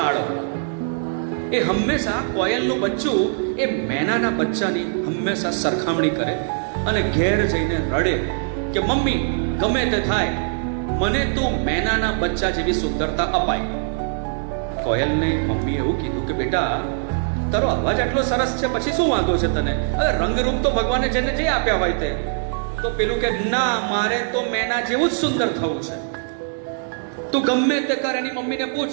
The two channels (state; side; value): silent; left; digital silence